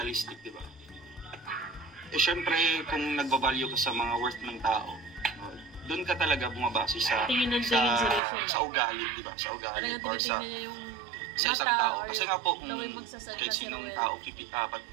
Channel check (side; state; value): left; drops out; at 8.2 s